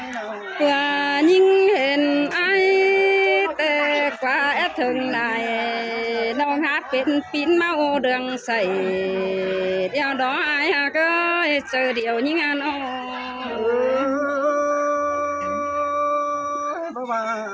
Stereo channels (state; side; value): identical; both; correlation 1.00